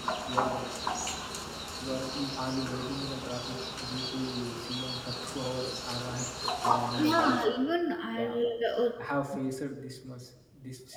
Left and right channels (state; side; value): identical; both; correlation 1.00